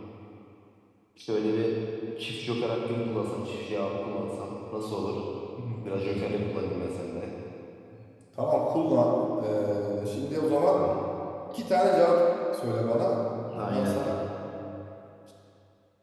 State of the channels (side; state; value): both; identical; correlation 1.00